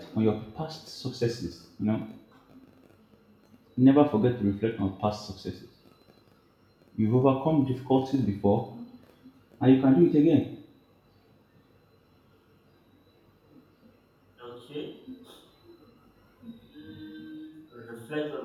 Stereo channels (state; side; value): identical; both; correlation 1.00